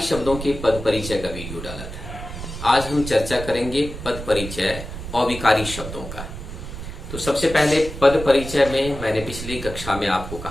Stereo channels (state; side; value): noise; right; rumble, 9 dB below the sound